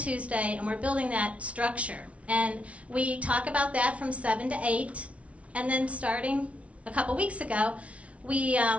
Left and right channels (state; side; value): late; left; 0.064 ms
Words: and we're building that structure. And we talk about that from 7 to 8. And then starting a couple weeks ago, we